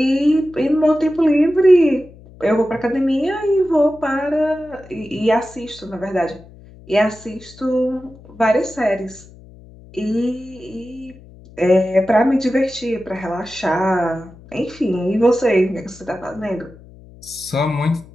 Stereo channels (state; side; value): noise; left; hum, 22 dB below the sound